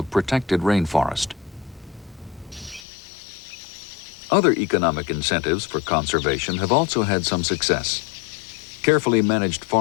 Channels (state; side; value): drops out; right; at 2.8 s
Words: protected rainforest. Other economic incentives for conservation have also had some success. Carefully managed